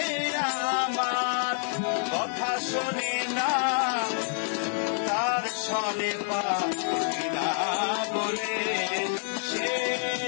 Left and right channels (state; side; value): silent; right; 57 dB below the other